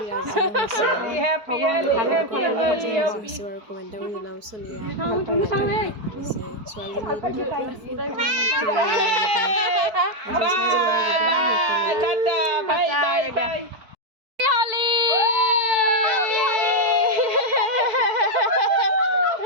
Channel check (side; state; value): left; late; 4.6 ms